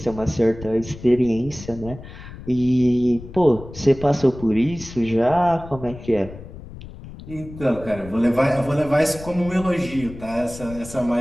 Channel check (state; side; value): noise; left; rumble, 15 dB below the sound